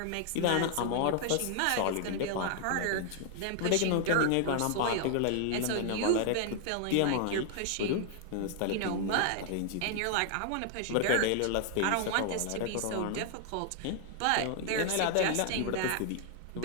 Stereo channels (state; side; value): different; both; correlation 0.00